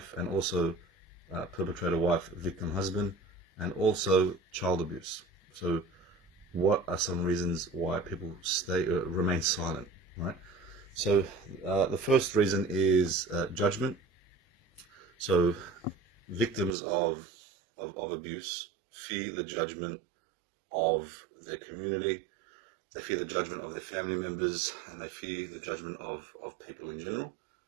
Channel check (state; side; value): drops out; left; at 16.8 s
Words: and also perpetrator, wife, victim, husband, and also child abuse. So what are some reasons why people remain silent, right? So the first reason is judgment. So victims of abuse fear the judgment of their community, they fear the judgment of their family members, and they fear the judgment of people in general.